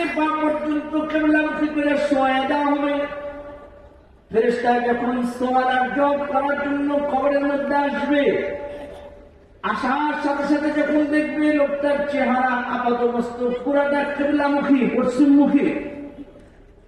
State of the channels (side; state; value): both; identical; correlation 1.00